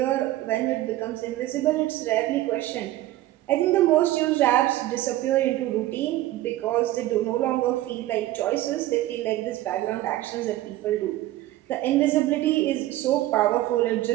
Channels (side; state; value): left; quieter; 15.4 dB